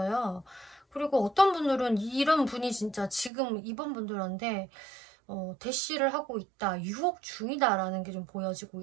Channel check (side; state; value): left; drops out; at 3.3 s